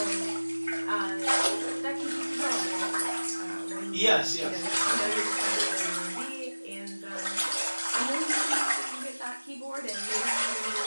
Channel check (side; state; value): both; inverted; correlation -1.00